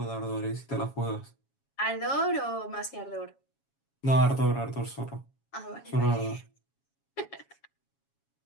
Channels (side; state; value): right; late; 7.3 ms